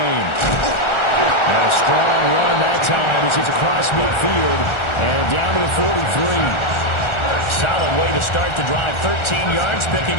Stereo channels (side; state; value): right; late; 1.4 ms